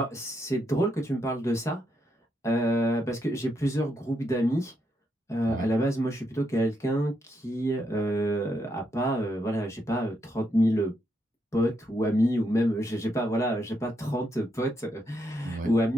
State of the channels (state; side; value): normal; both; correlation 0.79